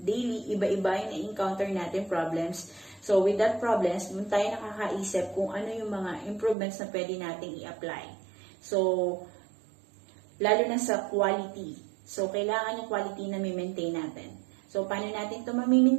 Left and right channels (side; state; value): left; drops out; at 6.6 s